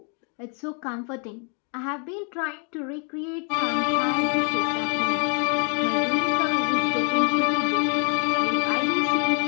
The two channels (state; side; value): quieter; right; 39.6 dB